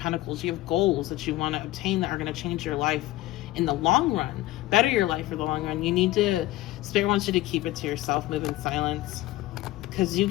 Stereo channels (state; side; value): quieter; right; 16.9 dB